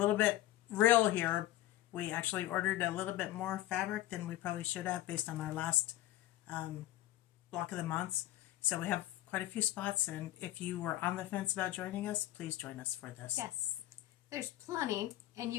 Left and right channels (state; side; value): quieter; right; 15.1 dB